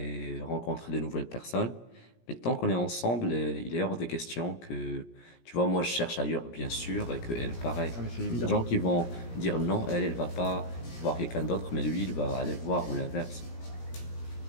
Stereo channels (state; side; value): late; right; 17 ms